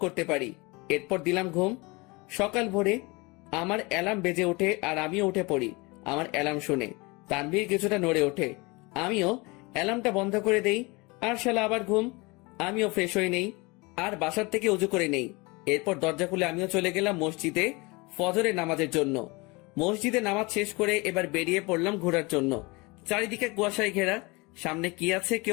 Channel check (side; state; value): right; quieter; 25.8 dB